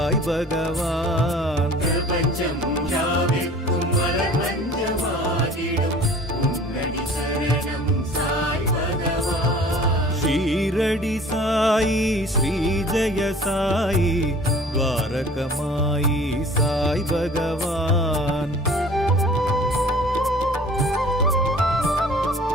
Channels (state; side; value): normal; both; correlation 0.48